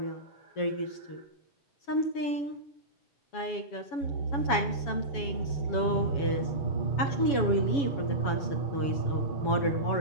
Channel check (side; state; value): right; late; 7.2 ms